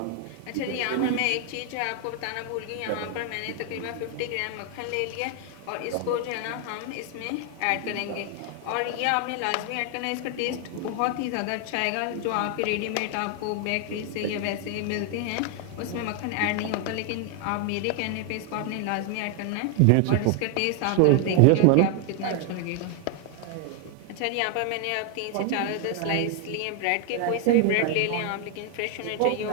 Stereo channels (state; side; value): different; both; correlation 0.00